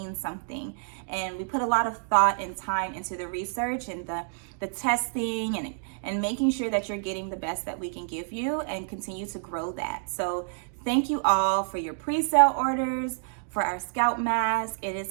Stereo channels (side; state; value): left; silent; digital silence